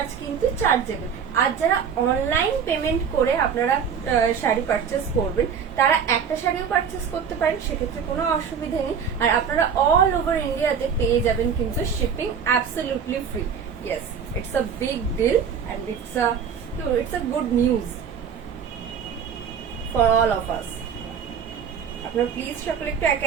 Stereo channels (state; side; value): quieter; left; 7.1 dB